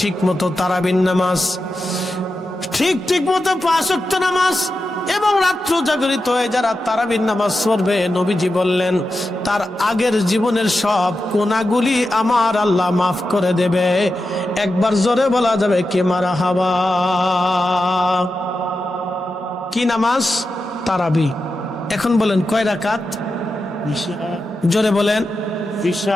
মতো তারাবির নামাজ, ঠিক মতো 5 ওয়াক্ত নামাজ, এবং রাত্র জাগরিত হয়ে যারা তারাবির নামাজ পড়বে, নবীজি বললেন তার আগের জীবনের সব গুনাহগুলি আমার আল্লাহ মাফ করে দেবে। একবার জোরে বলা যাবে কি মারহাবা? কি নামাজ? তারাবি। এখন বলেন কয় রাকাত? জোরে বলেন।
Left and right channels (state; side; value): normal; both; correlation 0.90